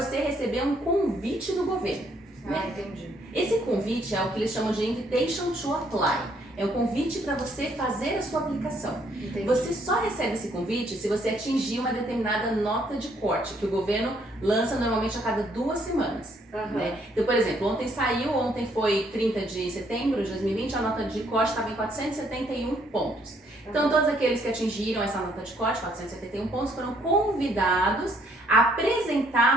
você receber um convite do governo. Entendi. Esse convite é o que eles chamam de Invitation to Apply. É um convite para você fazer a sua aplicação. Entendi. Você só recebe esse convite se você atingir uma determinada nota de corte, que o governo lança normalmente a cada 2 semanas. Né? Então, por exemplo, ontem foi 30 de setembro de 2020, a nota de corte estava em 471 pontos. Então, todos aqueles que atingiram essa nota de corte, 471 pontos, foram convidados a apresentar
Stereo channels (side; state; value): both; normal; correlation 0.68